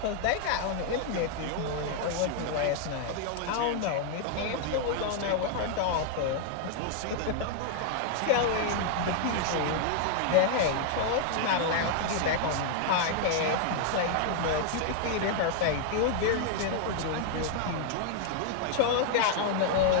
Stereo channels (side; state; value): both; different; correlation 0.00